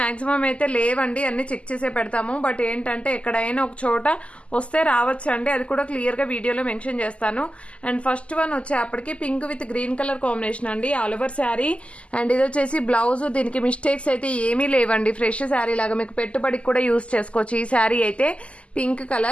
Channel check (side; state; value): right; late; 0.058 ms